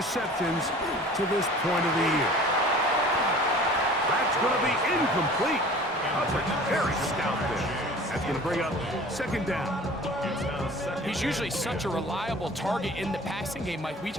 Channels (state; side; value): normal; both; correlation 0.45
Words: to this point of the year. That's going to be incomplete. Coverage very stout there. That's going to bring up 2nd down. he's usually such a reliable target in the passing game, Mike. We